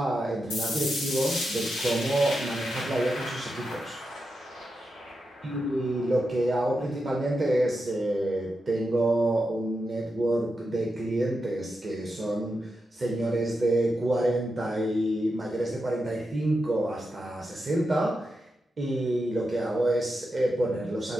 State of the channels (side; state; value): both; normal; correlation 0.87